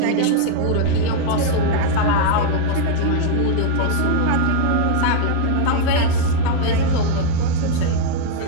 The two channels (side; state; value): both; different; correlation 0.00